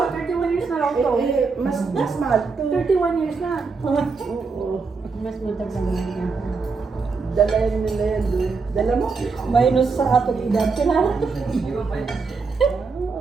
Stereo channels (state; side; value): quieter; left; 4.6 dB